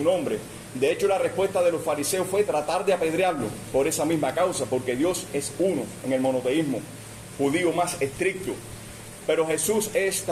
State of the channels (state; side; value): identical; both; correlation 1.00